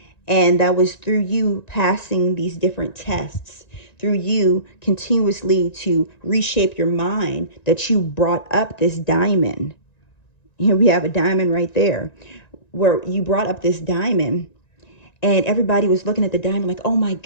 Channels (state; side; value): late; right; 1.9 ms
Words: And that was through you passing these different tests, through you continuously to reshape your mind that you brought up this diamond. Here we have a diamond right there where you brought up this diamond. And everybody was looking at the diamond like, oh my